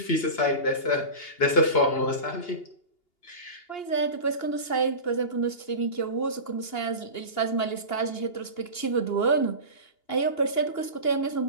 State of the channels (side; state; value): right; late; 2.8 ms